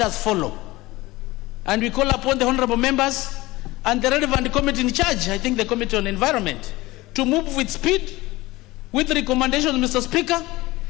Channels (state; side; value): quieter; right; 19.6 dB